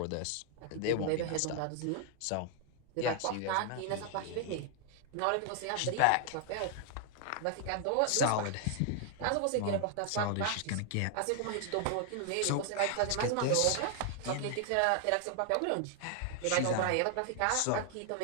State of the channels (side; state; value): both; different; correlation 0.00